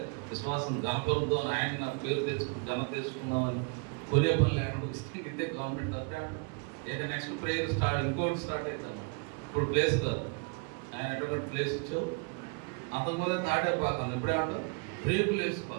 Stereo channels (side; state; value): left; quieter; 33.8 dB